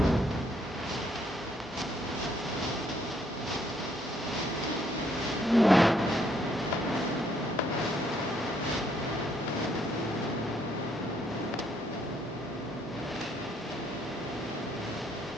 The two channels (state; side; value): normal; both; correlation 0.70